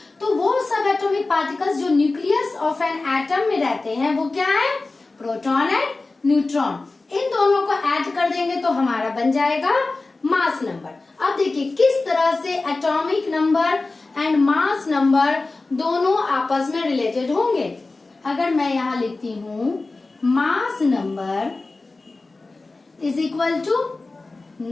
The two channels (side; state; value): right; quieter; 3.4 dB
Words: तो वो subatomic particles जो nucleus of an atom में रहते हैं, वो क्या है? Proton and neutron. इन दोनों को ऐड कर देंगे तो हमारा बन जाएगा मास नंबर। अब देखिए किस तरह से atomic number and mass number दोनों आपस में रिलेटेड होंगे। अगर मैं यहाँ लिखती हूँ mass number is equal to